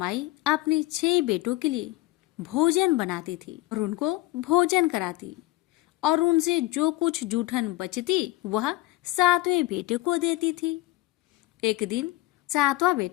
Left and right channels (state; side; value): quieter; right; 18.5 dB